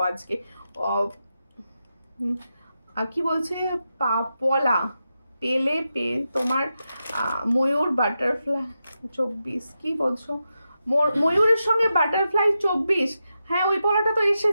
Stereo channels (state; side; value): inverted; both; correlation -0.88